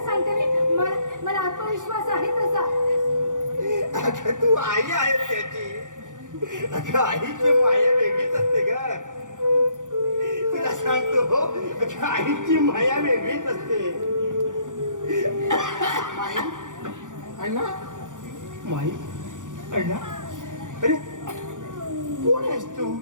सांगते मी, मला आत्मविश्वास आहे तसा. अगं तू आई आहे त्याची. अगं आईची माया वेगळीच असते ग. तुला सांगतो हो, अगं आईची माया वेगळीच असते. माई अण्णा, माई अण्णा, अरे कोण आहेस तू?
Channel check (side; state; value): left; late; 0.87 ms